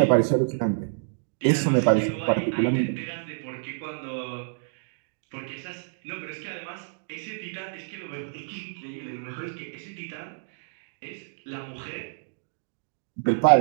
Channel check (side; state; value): left; silent; digital silence